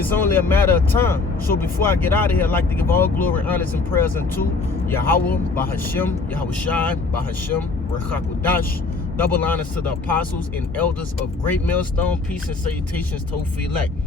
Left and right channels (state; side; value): quieter; right; 3.9 dB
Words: only a matter of time. So before I get out of here, I'd like to give all glory, honors, and prayers unto Yahweh Ba'Shem Yahushua Ba'Shem Rechakudash. Double honors to the apostles and elders of Great Millstone. Peace and salutations to Ophi elect.